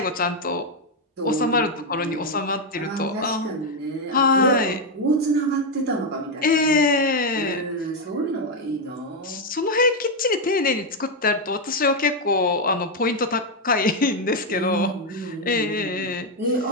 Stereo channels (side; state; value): both; normal; correlation 0.03